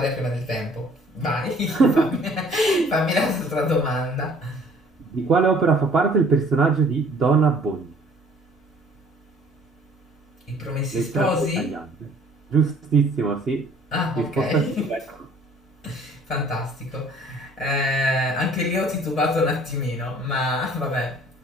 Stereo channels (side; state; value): both; normal; correlation 0.55